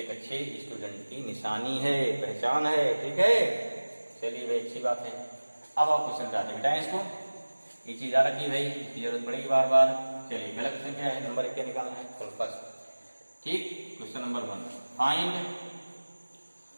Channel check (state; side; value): inverted; both; correlation -1.00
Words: अच्छे स्टूडेंट की निशानी है, पहचान है। ठीक है, चलिए भाई अच्छी बात है। अब आप क्वेश्चन जाते बेटाएं इसको, ये चीज याद रखिए भाई, इसकी जरूरत पड़ेगी बार बार। चलिए पहला क्वेश्चन क्या है, नंबर 1 क्या निकालना है? फर्स्ट। ठीक, question number 1, find